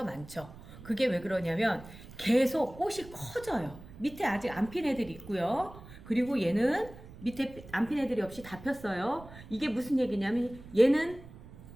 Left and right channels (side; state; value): right; noise; rumble, 17 dB below the sound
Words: 많죠. 그게 왜 그러냐면 계속 꽃이 커져요. 밑에 아직 안 핀 애들이 있고요. 그리고 얘는 밑에 안 핀 애들이 없이 다 폈어요. 이게 무슨 얘기냐면 얘는